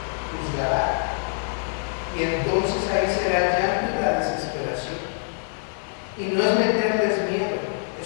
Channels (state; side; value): silent; right; digital silence